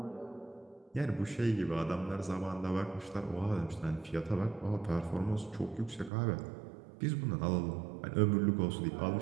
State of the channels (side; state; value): left; drops out; at 6.1 s